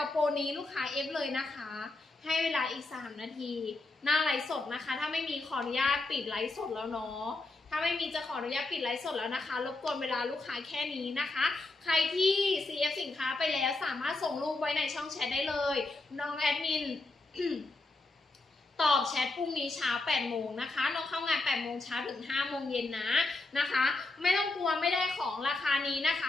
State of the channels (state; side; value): quieter; right; 3.1 dB